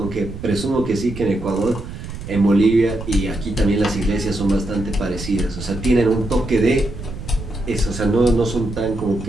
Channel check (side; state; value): right; noise; rumble, 10 dB below the sound